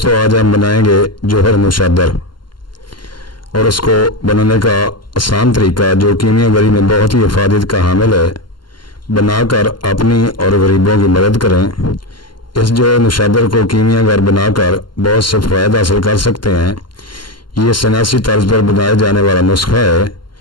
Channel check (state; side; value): late; right; 0.71 ms